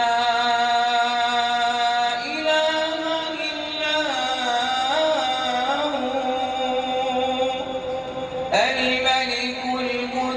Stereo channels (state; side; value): identical; both; correlation 1.00